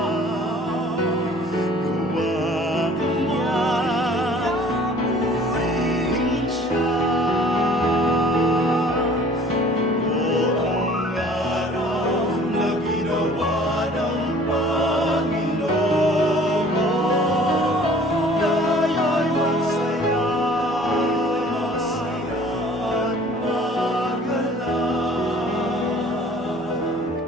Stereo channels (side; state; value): both; normal; correlation 0.51